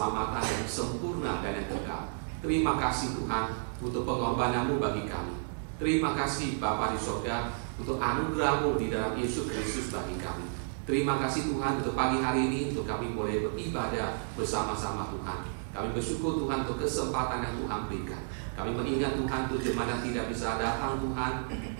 yang sempurna dan yang kekal. Terima kasih Tuhan untuk pengorbanan-Mu bagi kami. Terima kasih Bapa di surga untuk anugerah-Mu di dalam Yesus Kristus bagi kami. Terima kasih Tuhan untuk pagi hari ini, untuk kami boleh beribadah bersama-sama Tuhan. Kami bersyukur Tuhan untuk kesempatan yang Tuhan berikan. Kami mengingat Tuhan untuk jemaat yang tidak bisa datang Tuhan,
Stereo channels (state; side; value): silent; left; 57 dB below the other